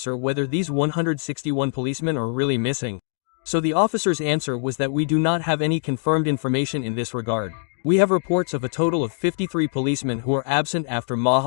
whether these 161 policemen are really missing, so the officer's answer was that we do not have any confirmed information in this regard. We have reports of a total of 53 policemen who are absent after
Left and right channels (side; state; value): right; silent; digital silence